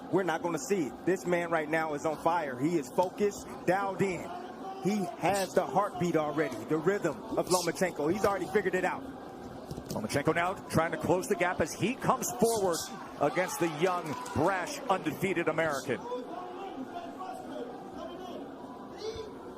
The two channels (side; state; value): both; identical; correlation 1.00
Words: we're not going to see it. This man right now is on fire. He is focused, dialed in. He has the heartbeat already, the rhythm of Lomachenko. He's already figured it out. Lomachenko now trying to close the gap as he comes forward against the young, brash, undefeated American.